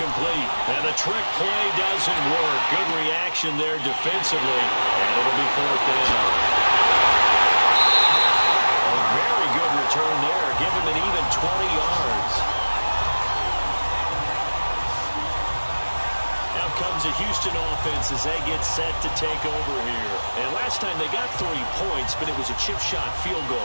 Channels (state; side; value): inverted; both; correlation -1.00